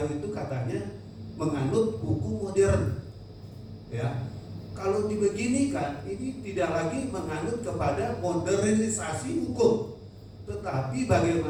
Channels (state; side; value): identical; both; correlation 1.00